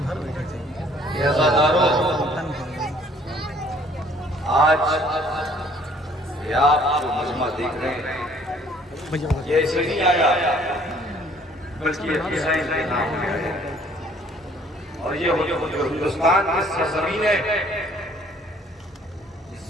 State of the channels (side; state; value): both; normal; correlation 0.59